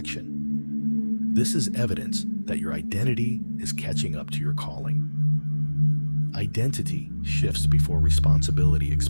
This is evidence that your identity is catching up to your calling. Identity shifts before responsibility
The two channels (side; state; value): both; inverted; correlation -1.00